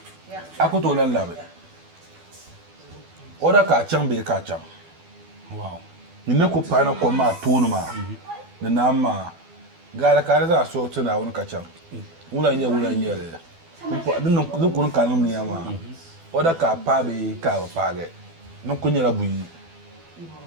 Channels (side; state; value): left; late; 12 ms